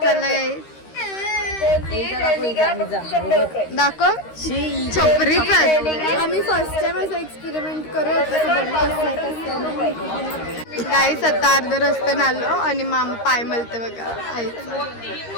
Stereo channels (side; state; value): right; late; 13 ms